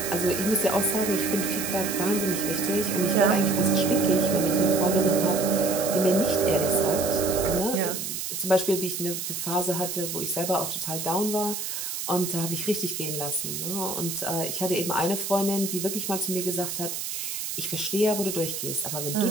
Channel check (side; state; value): right; noise; hiss, 5 dB below the sound